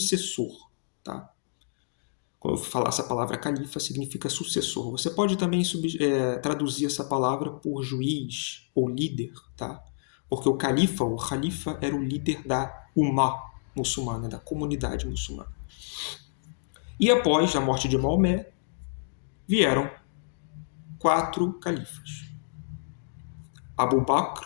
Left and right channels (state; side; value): silent; right; digital silence